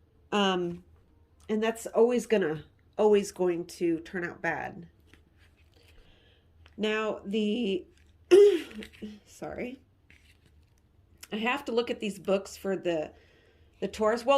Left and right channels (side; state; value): both; identical; correlation 1.00